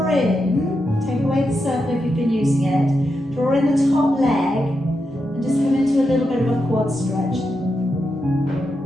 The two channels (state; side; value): normal; both; correlation 0.86